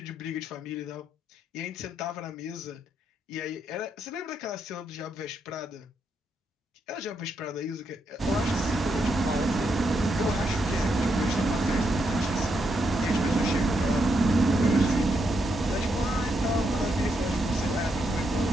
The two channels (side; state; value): both; normal; correlation 0.80